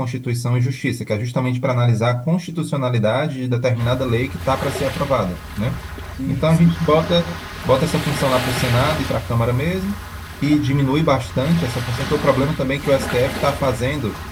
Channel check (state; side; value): identical; both; correlation 1.00